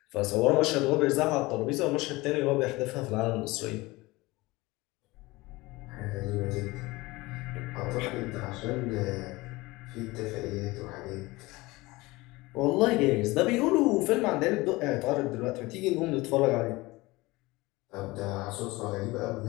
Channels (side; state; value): right; quieter; 21.5 dB